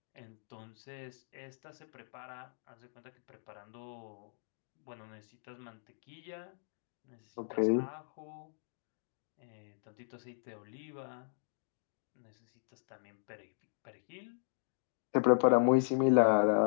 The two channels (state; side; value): silent; right; digital silence